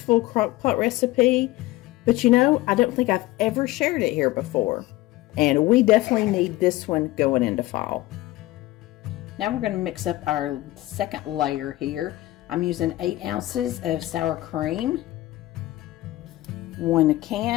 crock pot recipe, but you know, I don't think I've ever shared it here before. And we definitely need this one going into fall. Now we're going to mix up our second layer here. I'm using 8 ounces of sour cream, 1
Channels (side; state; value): right; quieter; 17.4 dB